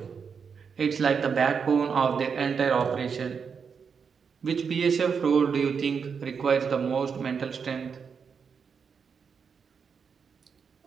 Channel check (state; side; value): quieter; left; 6.2 dB